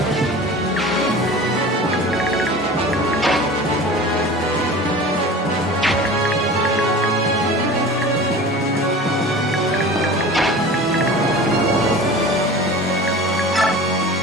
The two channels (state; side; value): normal; both; correlation 0.37